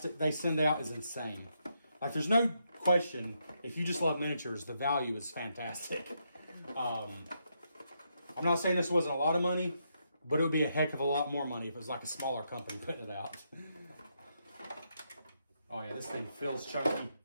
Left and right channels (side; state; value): both; inverted; correlation -0.79